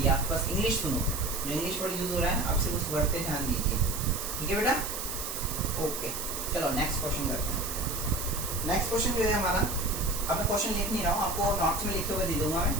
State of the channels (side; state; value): right; noise; hiss, 5 dB below the sound